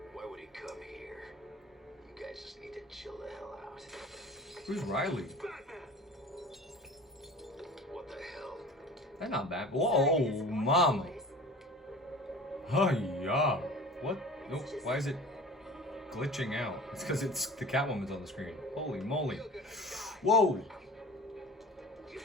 Why would he come here? You guys just need to chill the hell out. Who's Riley? What the hell? That's not bad. Whoa, mom. Oh yeah. What? Nope. Why is it glitching out? It's because it's the Catwoman's on the screen. Holy moly. Whoa.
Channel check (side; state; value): both; normal; correlation 0.40